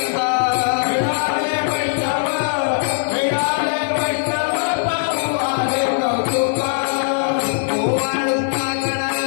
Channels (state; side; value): silent; right; digital silence